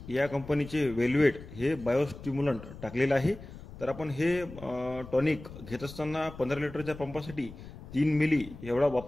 या कंपनीचे वेल्वेट हे बायोस्टिम्युलंट टाकलेलं आहे। तर आपण हे टॉनिक घेत असताना 15 लिटरच्या पंपासाठी 3 मिली एवढा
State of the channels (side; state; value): left; noise; rumble, 15 dB below the sound